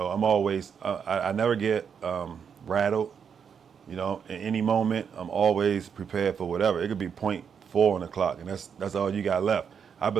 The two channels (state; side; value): quieter; left; 7.1 dB